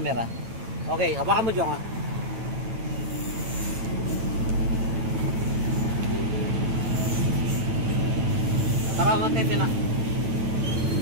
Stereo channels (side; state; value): left; late; 9.1 ms